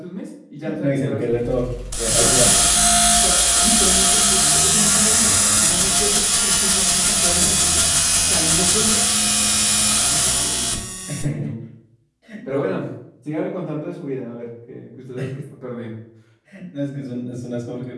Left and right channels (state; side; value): identical; both; correlation 1.00